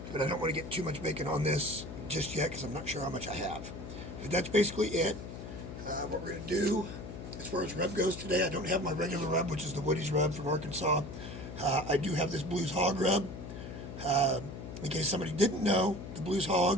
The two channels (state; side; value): noise; left; hum, 10 dB below the sound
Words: But I don't want to get too much bacon on this just yet because I'm not sure how much I have. But that's basically it. What we're going to do as far as rub goes today, I don't have my regular rub, which is the Woody's rub from Arkansas. I do have this Blues Hog rub. In case somebody didn't know, the Blues